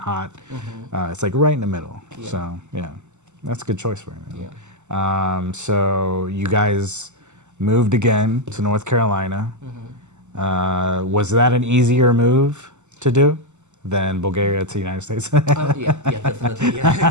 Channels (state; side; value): late; left; 0.83 ms